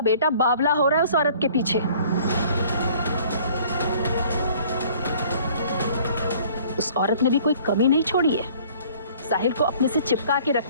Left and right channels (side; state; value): both; inverted; correlation -0.54